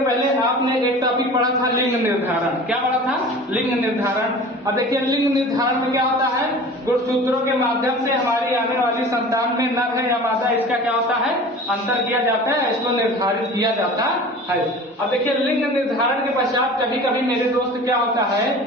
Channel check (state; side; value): normal; both; correlation 0.40